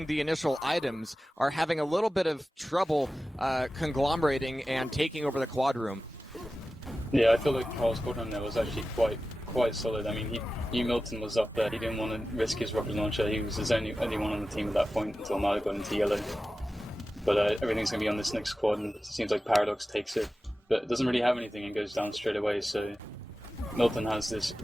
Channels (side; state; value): both; normal; correlation 0.94